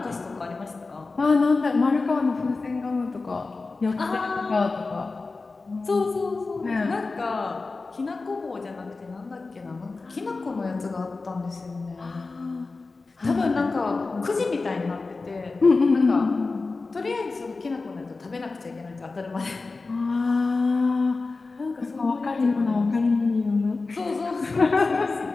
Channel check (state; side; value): quieter; right; 3.8 dB